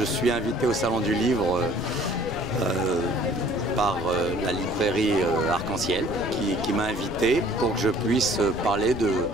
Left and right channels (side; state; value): left; noise; rumble, 11 dB below the sound